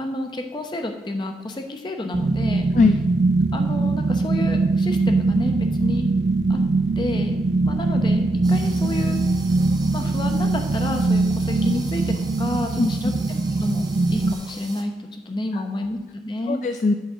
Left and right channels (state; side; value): normal; both; correlation 0.81